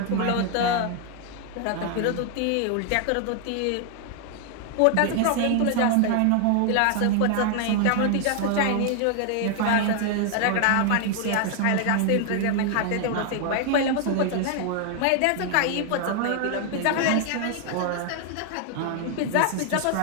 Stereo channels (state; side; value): different; both; correlation 0.00